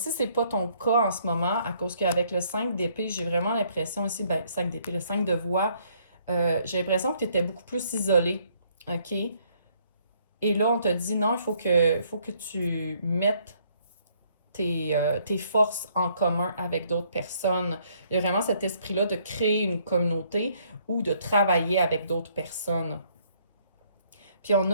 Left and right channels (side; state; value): both; inverted; correlation -0.66